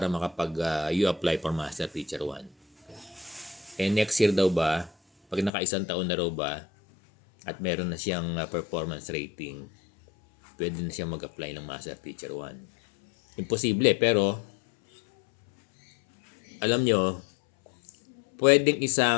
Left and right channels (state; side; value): drops out; right; at 5.5 s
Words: you apply for Master Teacher 1. Next year daw ba, pag naka-isang taon na raw ba, at meron na siyang performance rating, pwede na siyang mag-apply ng Master Teacher 1. Imposible, pero alam nyo, pwedeng